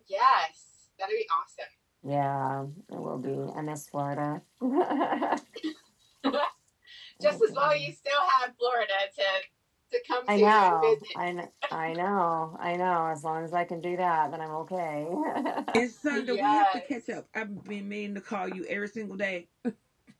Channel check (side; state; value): both; identical; correlation 1.00